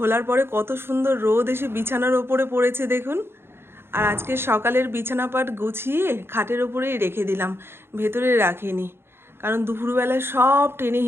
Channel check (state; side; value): late; left; 0.11 ms